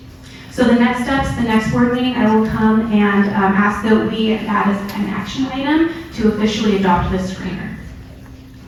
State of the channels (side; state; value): both; identical; correlation 1.00